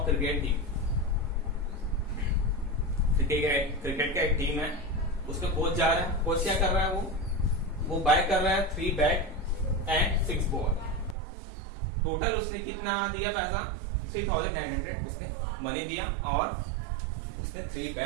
cricket team, cricket का एक टीम है, उसका कोच जा रहा है। कोच क्या कर रहा है, वो बाय कर रहा है 3 बैट एंड 6 बॉल। टोटल उसने कितना दिया पैसा, 3900 उसने मनी दिया, और उसने 3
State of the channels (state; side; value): drops out; left; at 11.2 s